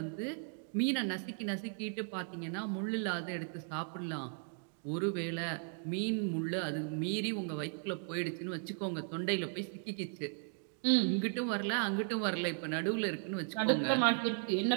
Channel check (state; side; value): silent; left; 54 dB below the other